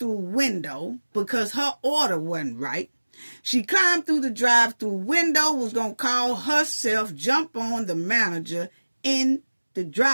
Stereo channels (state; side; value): inverted; both; correlation -1.00